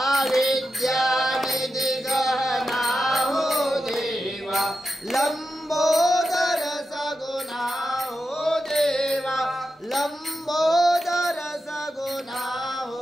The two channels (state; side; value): normal; both; correlation 0.89